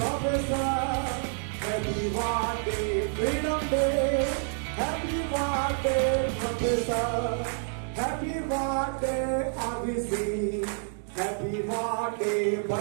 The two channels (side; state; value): left; silent; 59 dB below the other